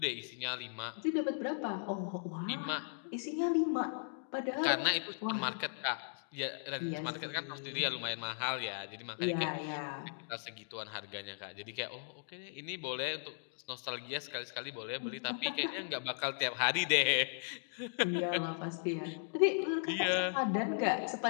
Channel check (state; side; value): silent; right; digital silence